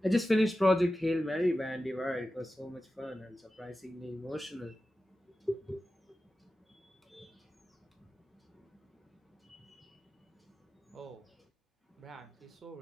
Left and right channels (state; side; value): normal; both; correlation 0.94